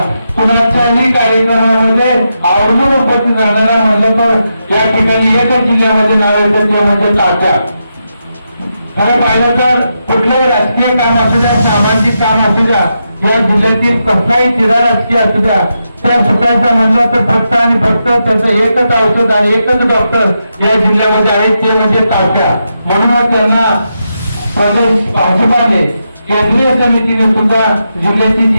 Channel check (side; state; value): both; inverted; correlation -0.85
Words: कुणाच्याही कार्यक्रमामध्ये आवर्जून उपस्थित राहणारा म्हणलं तर या ठिकाणी एकच जिल्ह्यामध्ये नाव येतं ते म्हणजे तात्या. खरं पाहिलं तर कुठलंही राजकीय काम असू द्या, सामाजिक काम असू द्या, या जिल्ह्यातील कसलाही तिरा राजकीय असू द्या, त्या सुटायचं म्हणलं तर फक्त आणि फक्त त्याचं एकच औषध आणि एकच डॉक्टर या जिल्ह्यामध्ये आहे ते म्हणजे तात्या. म्हणूनच त्यांना प्रदेश भाजपाने केंद्रीय समितीने सुद्धा जिल्ह्याची